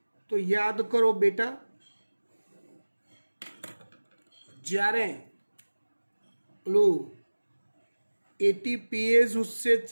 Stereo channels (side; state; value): both; inverted; correlation -1.00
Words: તો યાદ કરો બેટા, જ્યારે પેલું ATPase